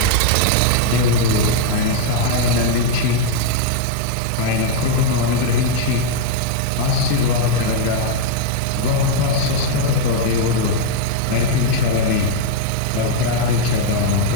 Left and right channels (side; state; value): both; different; correlation 0.00